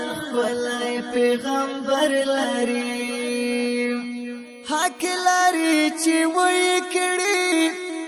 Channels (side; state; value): both; identical; correlation 1.00